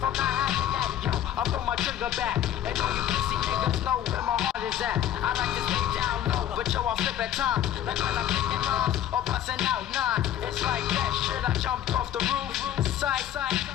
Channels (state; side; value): quieter; right; 11.2 dB